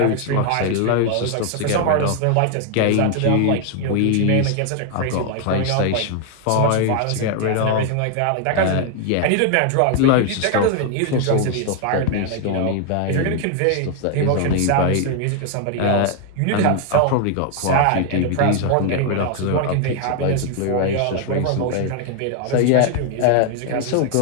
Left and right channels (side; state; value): both; different; correlation 0.00